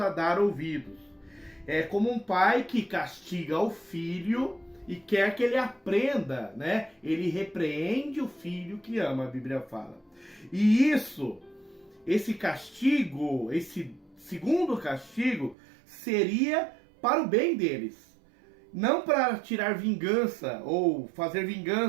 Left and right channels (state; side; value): drops out; left; at 15.6 s